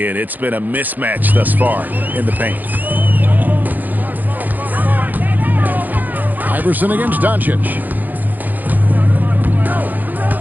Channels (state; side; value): late; left; 0.084 ms